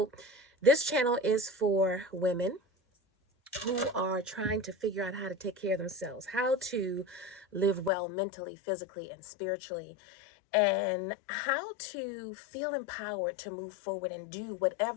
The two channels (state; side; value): drops out; right; at 7.9 s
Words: this channel is for women who are trying to figure out how to take care of themselves, how to live well mentally, physically, and spiritually, and how to feel empowered to move forward and do